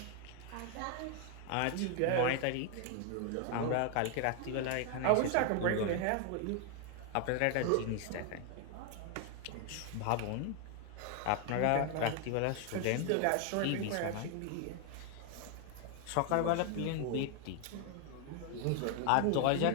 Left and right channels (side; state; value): both; different; correlation 0.00